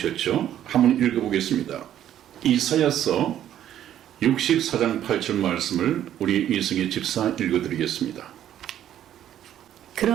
한번 읽어보겠습니다. 이사야서 64장 8절 말씀을 우리 이승희 집사 읽어드리겠습니다.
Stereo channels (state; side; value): quieter; left; 11.2 dB